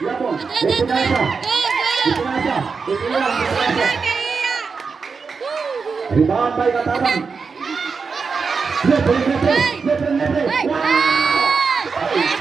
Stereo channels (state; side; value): quieter; left; 5.1 dB